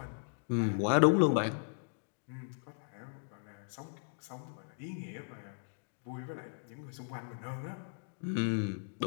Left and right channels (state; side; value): silent; right; digital silence